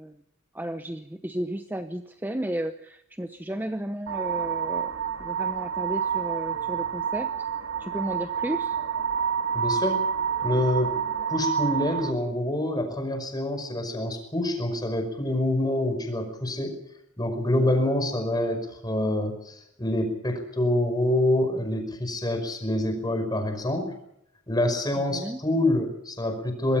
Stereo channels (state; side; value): normal; both; correlation 0.42